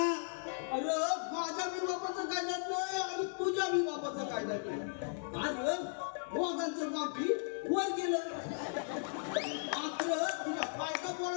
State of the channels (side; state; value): right; silent; digital silence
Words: अरे माझ्या मी बापाचं काय जात नाही आणि तुझ्या मी बापाचं काय जात नाही अरे दोघांचं बापी वर गेलं मात्र तुझ्या बायका